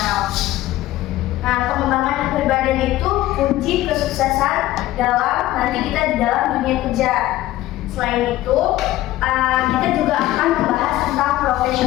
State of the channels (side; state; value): right; quieter; 15.7 dB